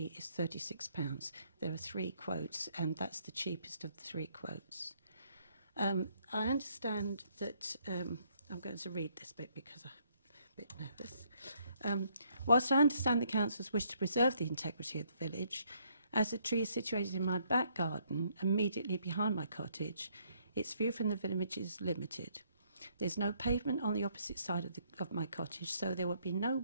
is £36. There are 3 quotes, and that's the cheapest of the 3 quotes. I understand that, I'm going to read this bit because I'm a bit nervous. Whilst I understand the council's wish to preserve the integrity of the village, as the tree is situated in my back garden, immediately behind my cottage, its view from the village is limited. There's no pavement on the opposite side of my cottage, so there will be no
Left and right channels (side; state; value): both; inverted; correlation -0.69